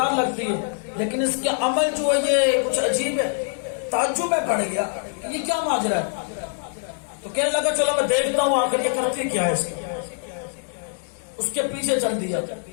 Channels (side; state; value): right; silent; digital silence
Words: لگتی ہے، لیکن اس کے عمل جو ہے یہ کچھ عجیب ہے۔ تعجب میں پڑ گیا یہ کیا ماجرا ہے، تو کہنے لگا چلو میں دیکھتا ہوں آخر یہ کرتی کیا ہے۔ اس کے پیچھے چل دیا